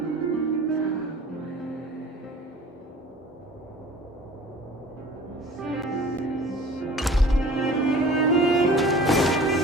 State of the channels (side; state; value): both; normal; correlation 0.44